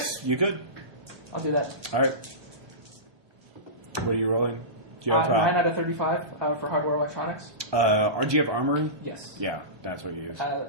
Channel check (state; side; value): late; left; 1.2 ms